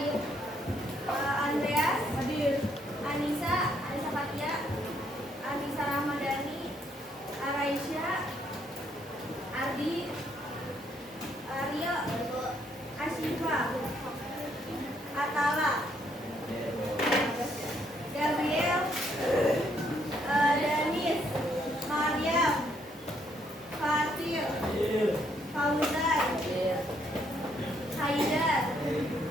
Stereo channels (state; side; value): normal; both; correlation 0.71